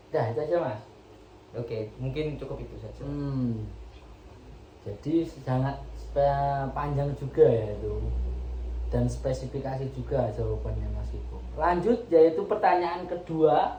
Dah, itu aja, Mas. Oke, mungkin cukup itu saja. Jadi sangat panjang juga ya itu, dan spesifikasi juga jawabannya Mas Iko. Lanjut, yaitu pertanyaan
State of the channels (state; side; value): identical; both; correlation 1.00